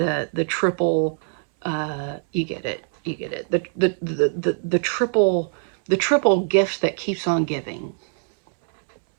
triple, you get it, you get it, the triple gift that keeps on giving.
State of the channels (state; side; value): silent; left; 64 dB below the other